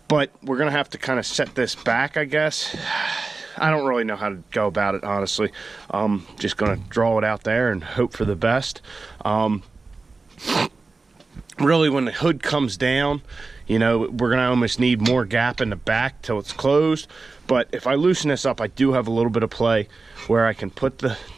But we're gonna have to kind of set this back, I guess. I don't really know how to go about it, honestly. Just gonna draw it out there and hope for the best. Really, when the hood comes down, you know, we're gonna almost need more gap in the back till it's closed. But if I loosen this up, I do have a little bit of play where I can put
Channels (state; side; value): quieter; left; 3.9 dB